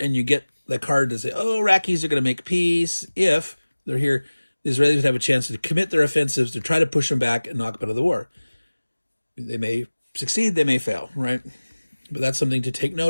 you get the card to say, oh, Iraqis are going to make peace. If they're here, the Israelis would have a chance to commit their offensives to try to push them back and knock them out of the war. They may succeed, they may fail, right? But that's something to take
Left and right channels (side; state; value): both; inverted; correlation -1.00